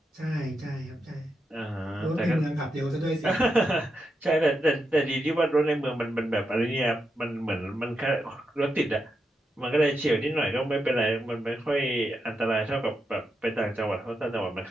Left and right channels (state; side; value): normal; both; correlation 0.85